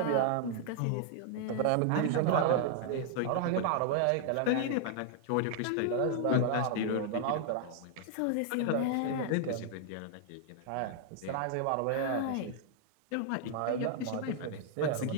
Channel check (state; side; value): different; both; correlation -0.01